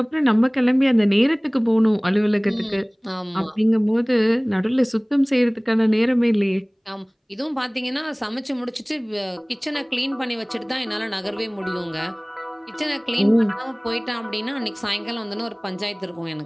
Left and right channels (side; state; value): both; identical; correlation 1.00